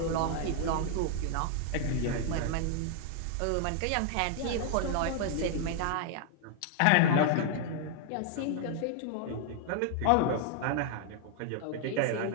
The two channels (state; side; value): different; both; correlation 0.00